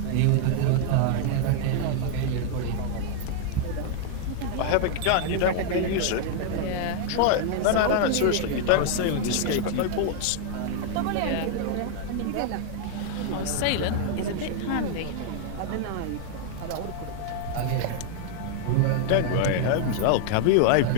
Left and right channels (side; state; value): both; different; correlation 0.00